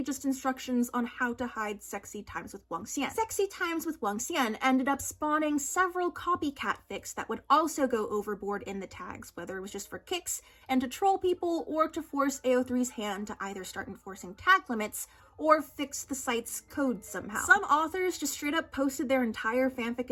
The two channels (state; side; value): identical; both; correlation 1.00